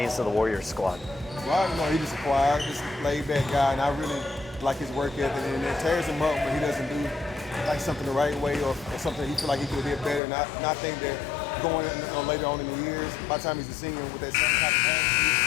to the Warriors squad. Rock, he's just a quiet, just laid-back guy, and I really like his work ethic. And it tears him up when he doesn't do something the right way or something he feel like he could have did better. And I think that going later on in the years, by the time he's a senior with that same type of talent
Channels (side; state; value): right; drops out; at 10.2 s